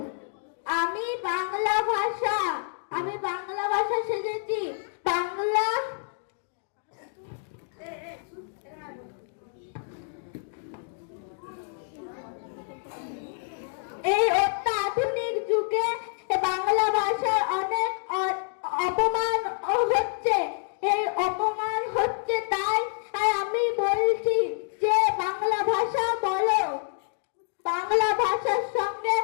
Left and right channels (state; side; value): silent; right; digital silence